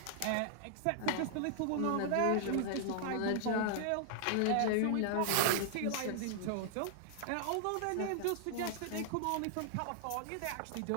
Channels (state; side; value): different; both; correlation -0.01